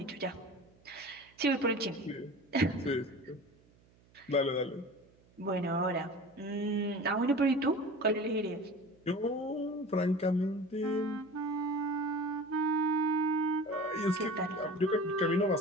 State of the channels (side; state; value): right; noise; hum, 30 dB below the sound